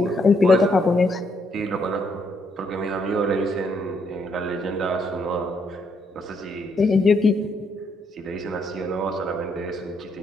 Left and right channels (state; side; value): normal; both; correlation 0.74